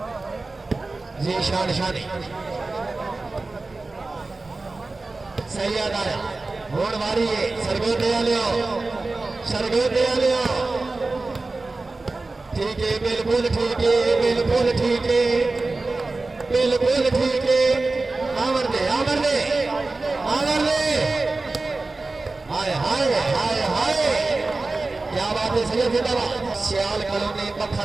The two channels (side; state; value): left; quieter; 3.4 dB